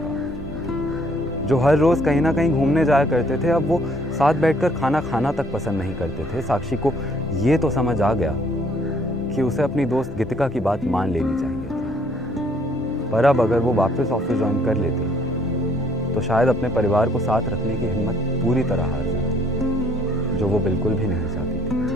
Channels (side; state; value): both; normal; correlation 0.63